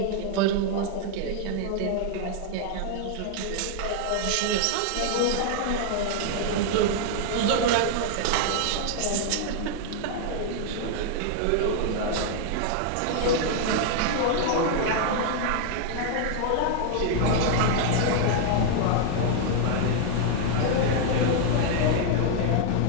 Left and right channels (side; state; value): both; different; correlation 0.00